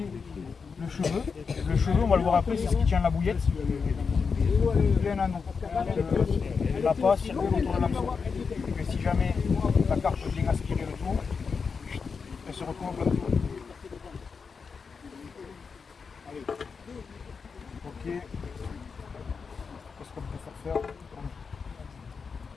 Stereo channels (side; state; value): right; quieter; 5.4 dB